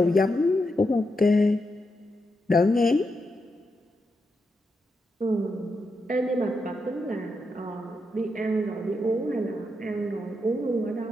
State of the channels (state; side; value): normal; both; correlation 0.84